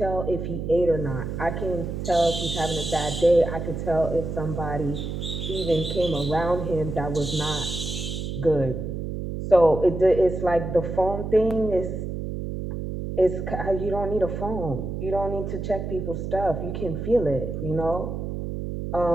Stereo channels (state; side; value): noise; right; hum, 5 dB below the sound